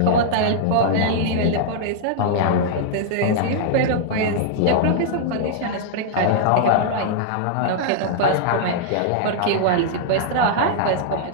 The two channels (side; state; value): both; different; correlation -0.01